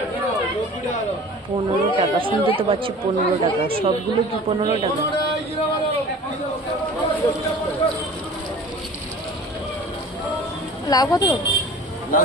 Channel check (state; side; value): normal; both; correlation 0.42